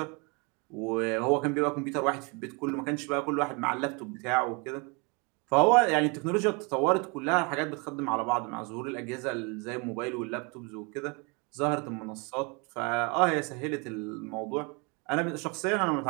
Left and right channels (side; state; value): left; quieter; 30.8 dB